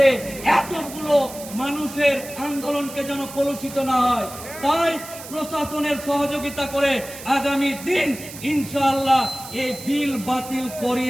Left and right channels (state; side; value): noise; right; hiss, 13 dB below the sound